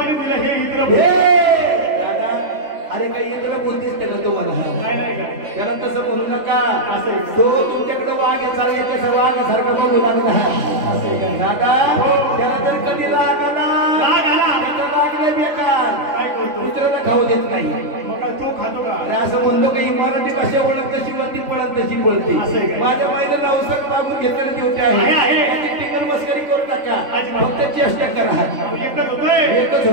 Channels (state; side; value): late; left; 3.5 ms